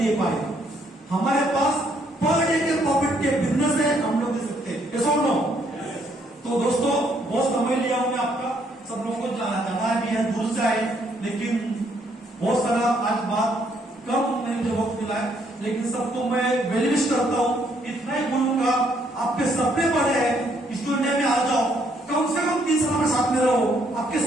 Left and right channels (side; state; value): both; normal; correlation 0.70